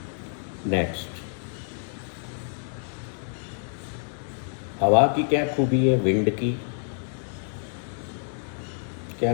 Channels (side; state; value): right; silent; digital silence